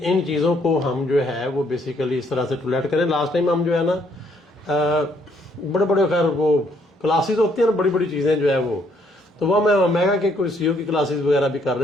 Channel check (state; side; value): normal; both; correlation 0.68